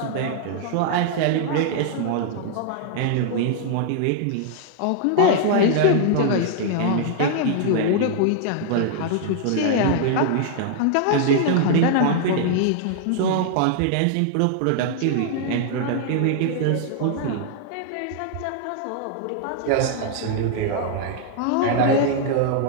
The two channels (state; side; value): different; both; correlation 0.00